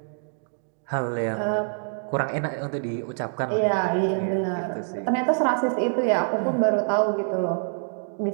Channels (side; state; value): left; silent; digital silence